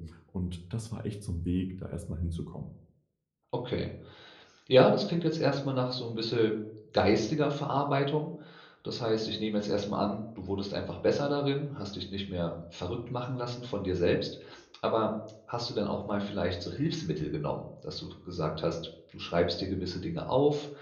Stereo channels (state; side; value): identical; both; correlation 1.00